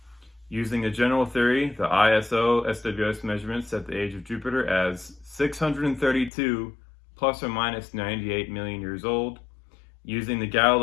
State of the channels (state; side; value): drops out; right; at 6.3 s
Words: Using a general theory, the ISO SWS measurement set the age of Jupiter as 632 plus or minus 98 million years old. Using the